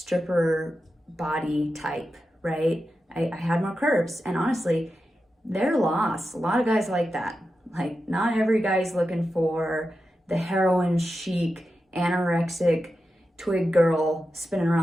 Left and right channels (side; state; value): both; normal; correlation 0.90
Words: body type, right? I had more curves, and honestly, they're lost. A lot of guys like that. Like, not every guy's looking for the heroin chic, anorexic, twig girl spinning